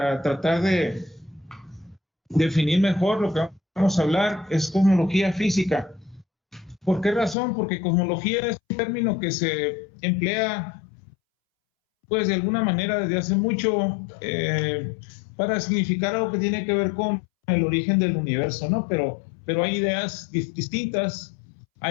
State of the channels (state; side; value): drops out; right; at 7.4 s